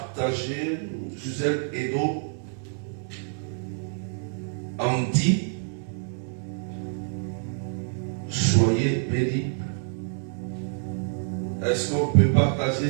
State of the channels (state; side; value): silent; left; 60 dB below the other